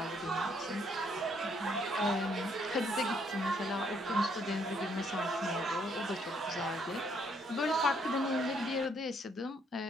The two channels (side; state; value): both; normal; correlation 0.69